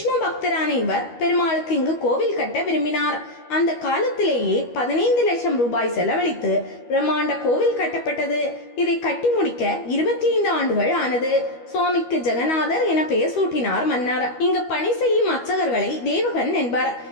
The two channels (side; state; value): right; late; 12 ms